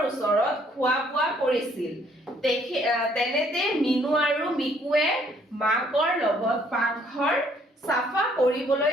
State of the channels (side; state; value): both; normal; correlation 0.64